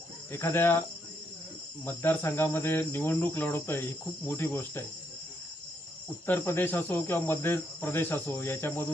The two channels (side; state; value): both; normal; correlation 0.75